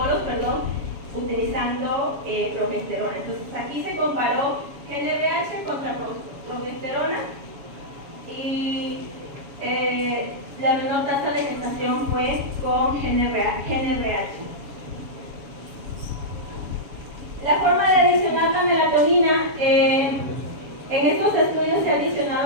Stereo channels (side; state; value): left; late; 7.2 ms